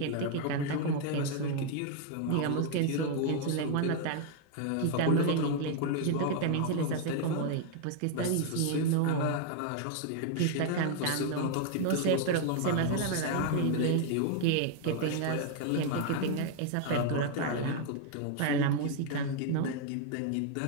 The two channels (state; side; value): different; both; correlation 0.00